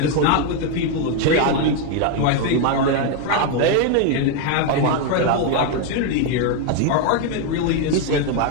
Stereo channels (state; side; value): different; both; correlation 0.01